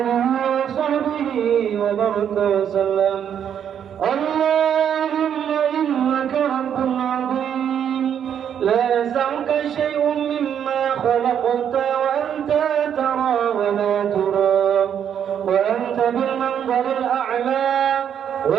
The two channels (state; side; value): quieter; left; 8.8 dB